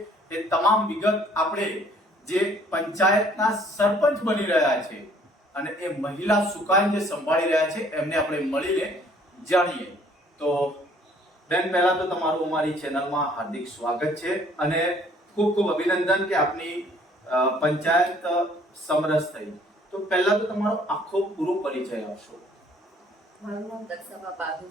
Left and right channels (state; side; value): normal; both; correlation 0.59